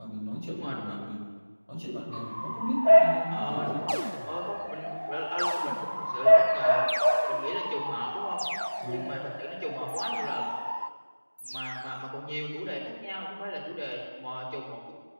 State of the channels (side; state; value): both; inverted; correlation -1.00